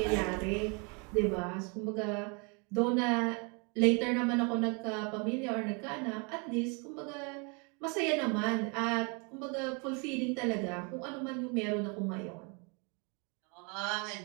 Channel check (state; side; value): quieter; left; 33.6 dB